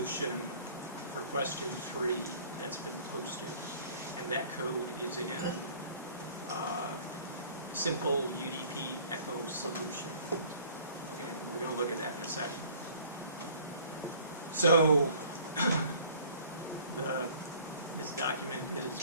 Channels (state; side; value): inverted; both; correlation -0.52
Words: for question 3 that's been posted, and that code is in simple UDP echo solution. Okay, we're going to look at that in a second. So this document is